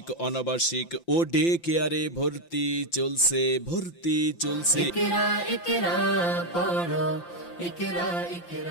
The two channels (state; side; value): late; right; 5.8 ms